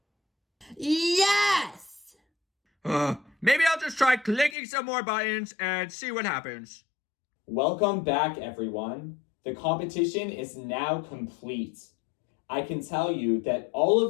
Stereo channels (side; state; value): right; drops out; at 4.5 s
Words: Yes! Maybe I'll just try clicking some more buttons and see what happens. Welcome back, everyone. The competition is now complete. I can tell you that all